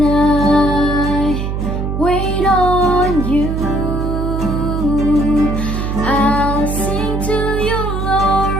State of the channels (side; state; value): right; noise; hum, 2 dB below the sound